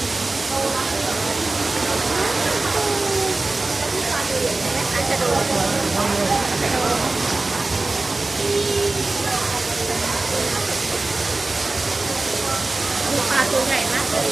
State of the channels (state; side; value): quieter; left; 3.2 dB